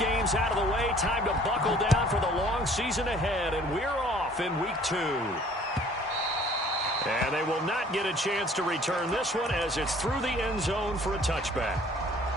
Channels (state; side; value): normal; both; correlation 0.54